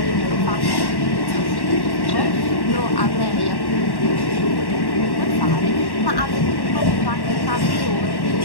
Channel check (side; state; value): right; late; 1.1 ms